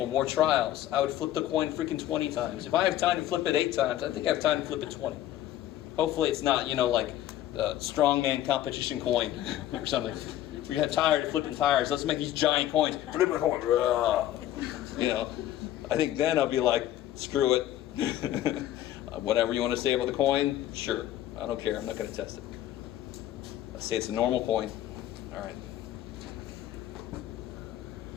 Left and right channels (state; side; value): quieter; right; 13.0 dB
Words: more trials. I would flip the coin freaking 20 times. If I have time to flip it 8 times, I think I have time to flip it 20. Hopefully it's not, like a strongman competition coin or something. We got tired of flipping tires. Let's make these giant coins. Flip a coin. I think then I'll be like, screw it. Whatever you want to say about the coin, sure. I don't care. I'm not going to test it. Let's say it's a normal coin. All right.